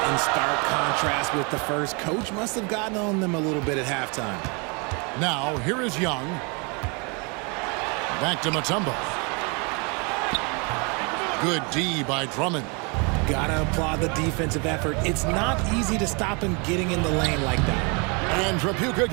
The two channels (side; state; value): left; quieter; 32.4 dB